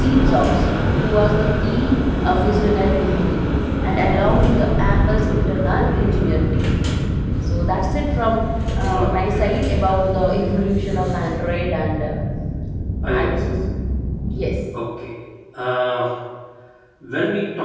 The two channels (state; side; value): identical; both; correlation 1.00